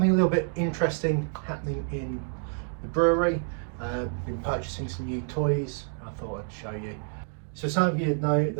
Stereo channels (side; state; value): left; silent; 59 dB below the other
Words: a little bit interesting happening in the brewery. Been purchasing some new toys. I thought I'd show you. So some of you know